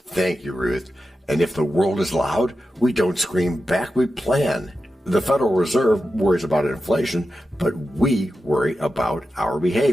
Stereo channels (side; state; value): both; normal; correlation 0.91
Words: you, Ruth. And if the world is loud, we don't scream back, we plan. The Federal Reserve worries about inflation, but we worry about our